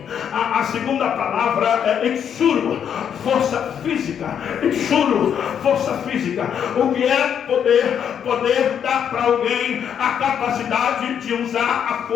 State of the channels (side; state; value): right; quieter; 8.4 dB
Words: A segunda palavra é exuro, força física. Exuro, força física. O que é poder? Poder dá para alguém a capacidade de usar a